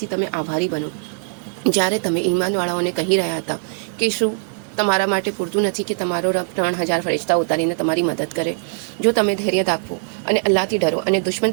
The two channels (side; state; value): left; silent; digital silence